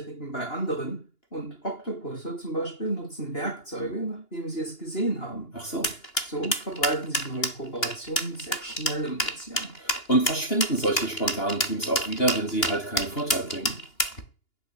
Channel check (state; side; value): late; right; 2.9 ms